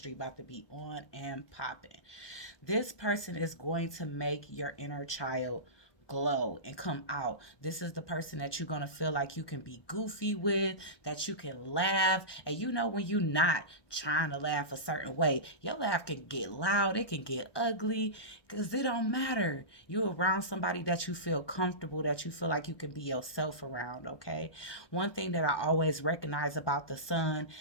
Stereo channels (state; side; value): late; right; 1.2 ms